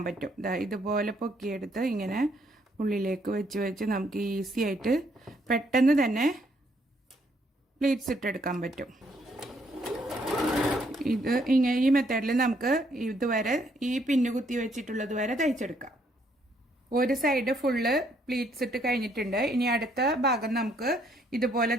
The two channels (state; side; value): normal; both; correlation 0.70